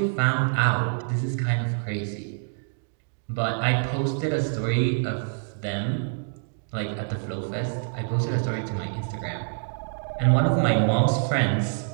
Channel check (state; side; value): silent; left; digital silence